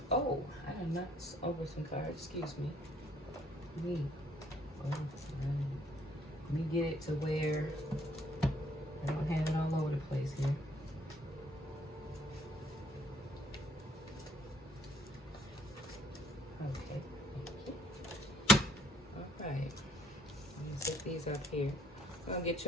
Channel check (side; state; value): both; normal; correlation 0.63